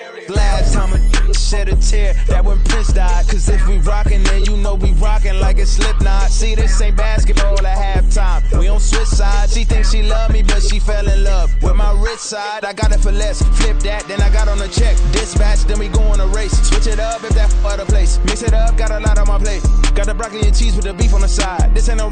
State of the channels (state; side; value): identical; both; correlation 1.00